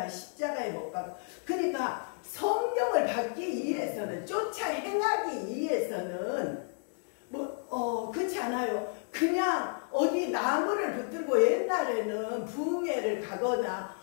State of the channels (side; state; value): right; silent; 57 dB below the other